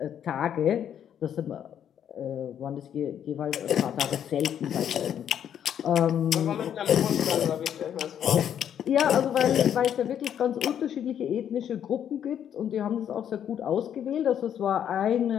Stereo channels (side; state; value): right; quieter; 9.4 dB